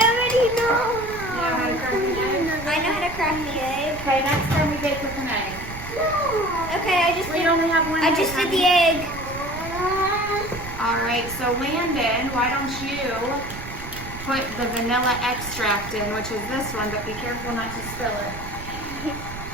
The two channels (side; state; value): right; noise; rumble, 11 dB below the sound